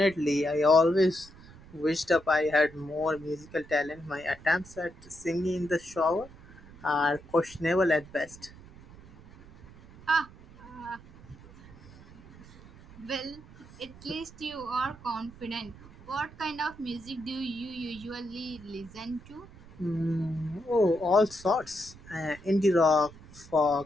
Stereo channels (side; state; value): right; noise; rumble, 20 dB below the sound